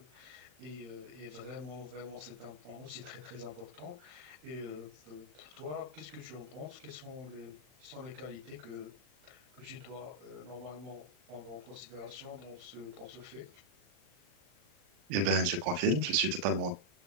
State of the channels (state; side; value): late; left; 40 ms